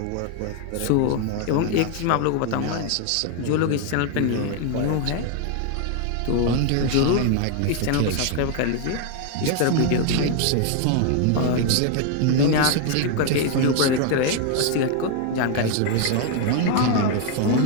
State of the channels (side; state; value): both; different; correlation 0.00